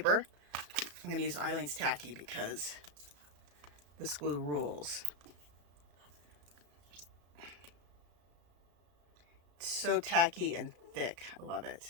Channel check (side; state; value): left; late; 34 ms